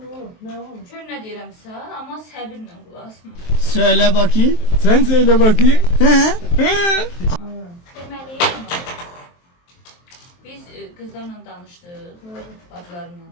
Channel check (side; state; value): right; late; 23 ms